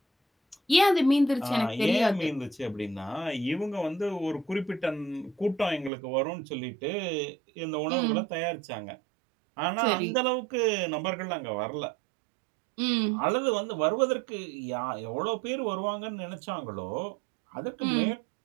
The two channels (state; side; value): drops out; left; at 5.9 s